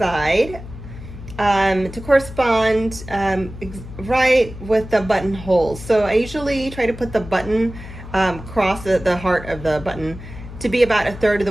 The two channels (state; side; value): noise; left; hum, 13 dB below the sound